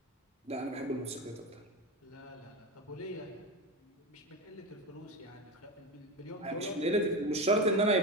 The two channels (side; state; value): both; normal; correlation 0.20